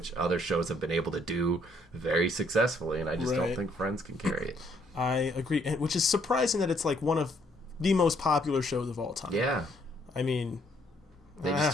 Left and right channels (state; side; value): normal; both; correlation 0.67